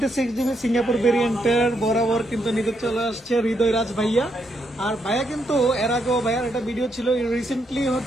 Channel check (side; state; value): both; normal; correlation 0.78